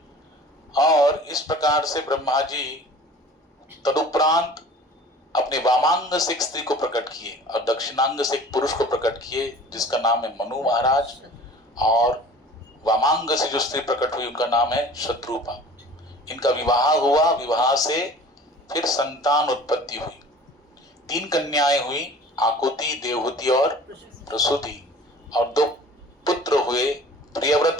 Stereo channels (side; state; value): both; normal; correlation 0.45